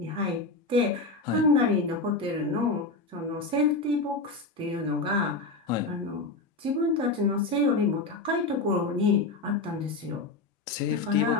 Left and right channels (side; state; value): right; quieter; 3.5 dB